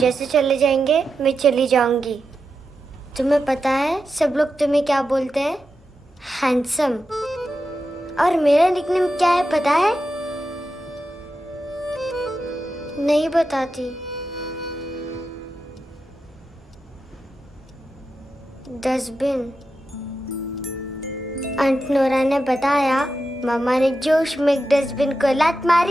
चले जाएंगे मैं चली जाऊंगी। तुम्हें पता है सब लोग तुम्हें क्या बोलते हैं? हैंडसम। और मेरा निकनेम क्या है पता है? नहीं बताती। डस्टबिन। आंट नोरा ने बताया मामा ने जोश में एक डस्टबिन को लात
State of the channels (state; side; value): normal; both; correlation 0.89